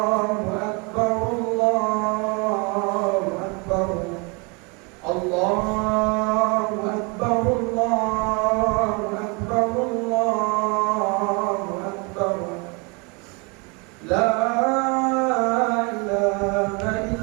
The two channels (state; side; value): quieter; left; 30.9 dB